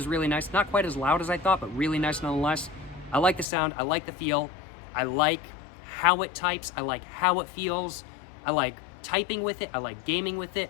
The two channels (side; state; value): right; drops out; at 3.5 s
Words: really nice. Not quite as loud as I thought, but really nice nonetheless. I like the sound. I like the feel. I like how it types. I like how it feels. I like typing with it. I like gaming with